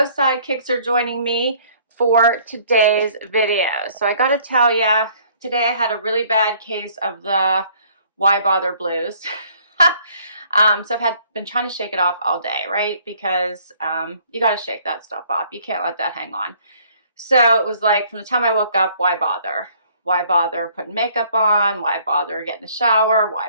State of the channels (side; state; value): both; inverted; correlation -0.60